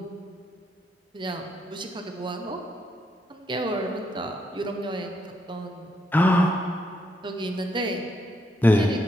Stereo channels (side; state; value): both; normal; correlation 0.77